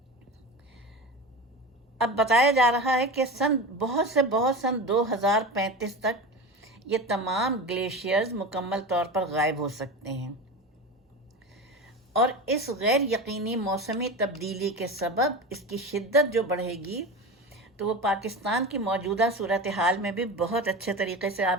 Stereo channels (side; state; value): both; normal; correlation 0.27